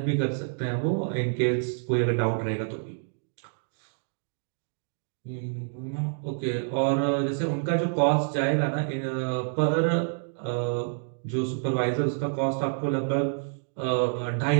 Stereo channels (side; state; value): left; silent; digital silence